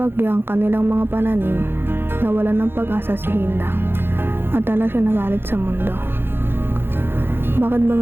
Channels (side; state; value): left; late; 0.10 ms